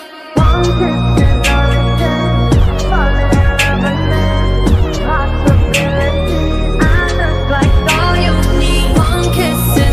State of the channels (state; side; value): identical; both; correlation 1.00